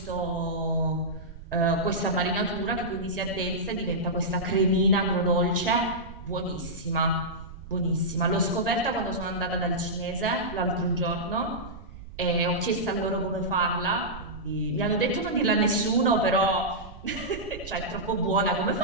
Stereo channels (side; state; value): right; noise; rumble, 14 dB below the sound